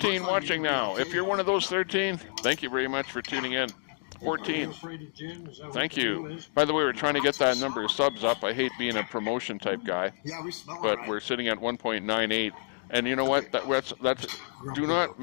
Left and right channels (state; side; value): silent; right; 59 dB below the other